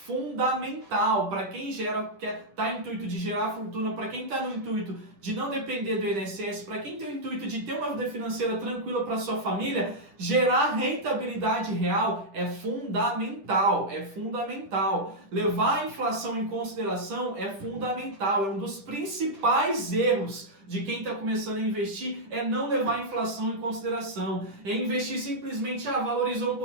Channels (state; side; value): late; left; 10 ms